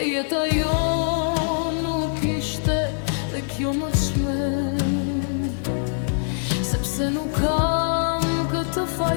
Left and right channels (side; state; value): right; silent; digital silence